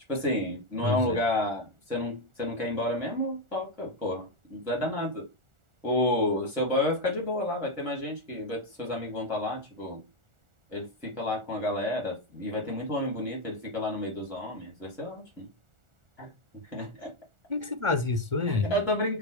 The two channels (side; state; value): left; late; 1.4 ms